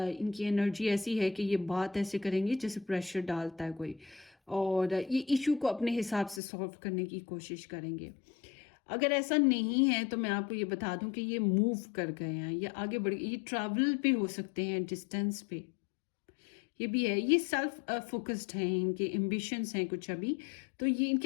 एनर्जी ऐसी है कि ये बात ऐसे करेंगे जैसे प्रेशर डालता है कोई, और ये इशू को अपने हिसाब से सॉल्व करने की कोशिश करेंगे। अगर ऐसा नहीं है तो मैं आपको ये बता दूं कि ये मूव कर गए हैं, ये आगे बढ़ गए, ये ट्रैवल पे हो सकते हैं, डिस्टेंस पे, ये भी है। ये सेल्फ फोकस्ड हैं, इनके एम्बिशंस हैं कुछ अभी, तो ये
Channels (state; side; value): drops out; right; at 6.4 s